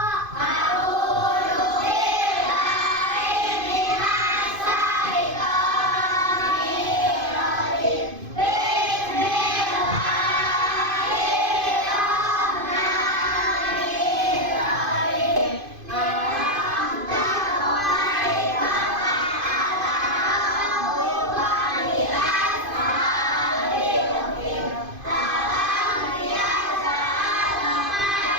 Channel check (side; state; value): left; late; 2.5 ms